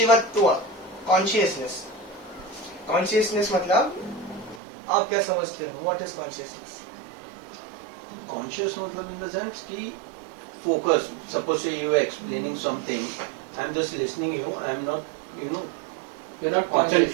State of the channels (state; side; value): drops out; left; at 4.6 s